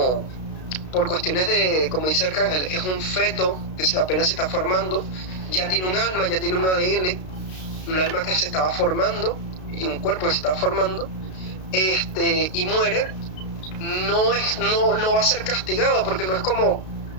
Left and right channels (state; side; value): late; right; 32 ms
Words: por cuestiones de, como dice Arcángel, es un feto que apenas se está formando, ya tiene un alma, ya tiene un ADN, un alma que se estaba formando y un cuerpo que se estaba formando, y muere, no va a ser castigado, porque no es como